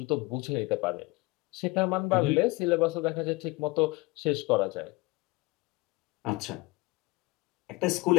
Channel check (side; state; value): right; quieter; 22.1 dB